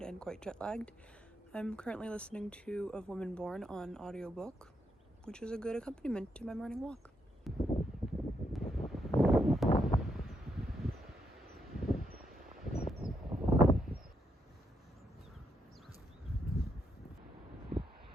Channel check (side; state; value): both; normal; correlation 0.79